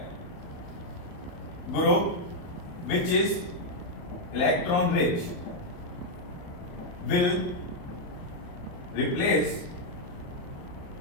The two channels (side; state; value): right; late; 28 ms